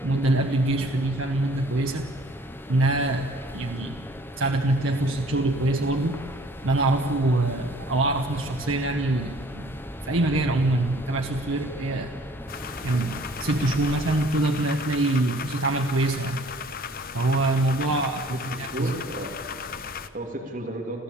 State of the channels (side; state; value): both; normal; correlation 0.54